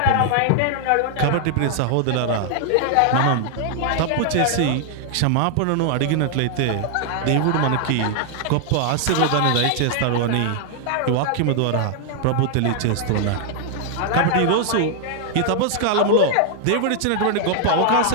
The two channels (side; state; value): both; different; correlation 0.00